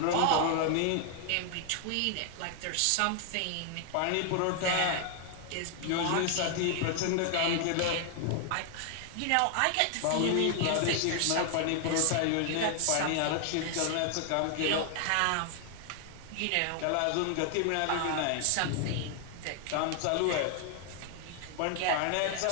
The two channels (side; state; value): both; different; correlation 0.00